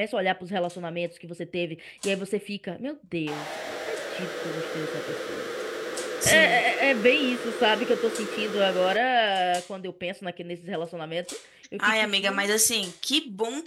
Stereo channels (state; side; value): identical; both; correlation 1.00